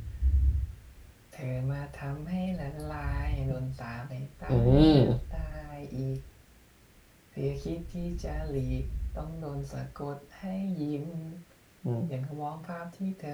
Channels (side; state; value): both; identical; correlation 1.00